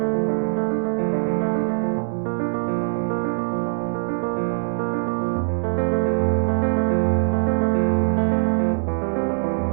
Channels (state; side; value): silent; left; digital silence